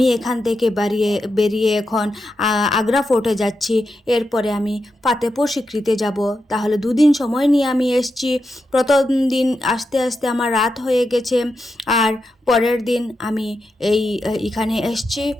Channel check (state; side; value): normal; both; correlation 0.87